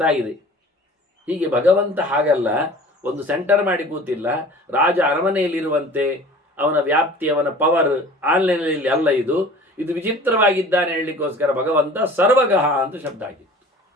ಆಗಿದೆ. ಹೀಗೆ ಭಗವಂತ ಹಾಗಲ್ಲ, ಒಂದು ಸೆಂಟರ್ ಮಾಡಿ ಕೂತಿಲ್ಲ. ರಾಜ ಅರಮನೆಯಲ್ಲಿರುವಂತೆ ಅವನ ವ್ಯಾಪ್ತಿ, ಅವನ ಪವರ್ ಆನ್ಲೈನಲ್ಲಿ ಅಲ್ಲ. ಇದು ವಿಚಿತ್ರವಾಗಿದ್ದಾನೆ ಹೇಳಲಿಕ್ಕೋಸ್ಕರ ಭಗವಂತ ಸರ್ವಗಹ ಅಂತ ಶಬ್ದ ಆಗಿತ್ತು.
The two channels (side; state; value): both; normal; correlation 0.44